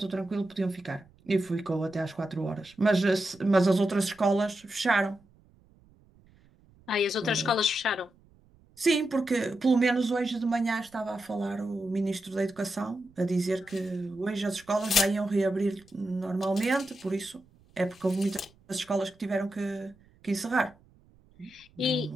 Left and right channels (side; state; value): right; noise; rumble, 29 dB below the sound